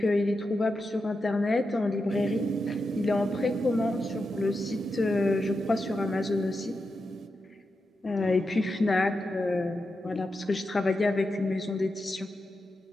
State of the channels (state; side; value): normal; both; correlation 0.88